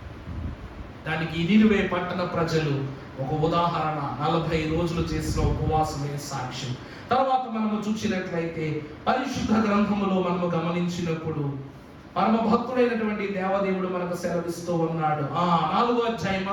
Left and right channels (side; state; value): both; identical; correlation 1.00